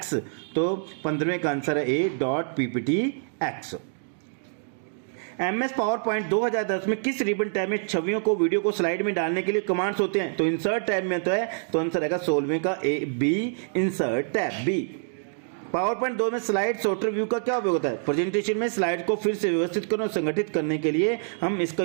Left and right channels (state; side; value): silent; left; digital silence